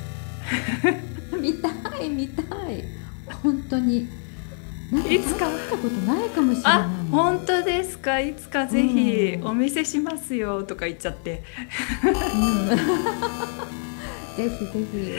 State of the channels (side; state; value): right; silent; 59 dB below the other